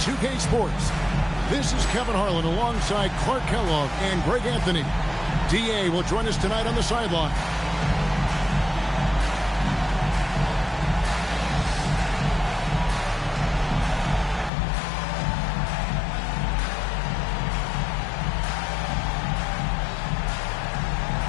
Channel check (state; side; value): drops out; right; at 14.5 s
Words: Sports. This is Kevin Harlan alongside Clark Kellogg and Greg Anthony. DA will join us tonight on the sideline.